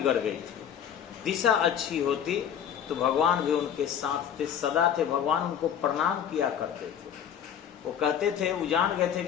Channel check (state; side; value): quieter; right; 8.9 dB